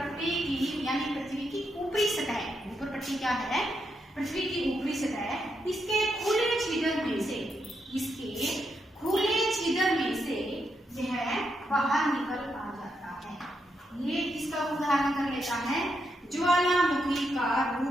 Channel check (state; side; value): normal; both; correlation 0.81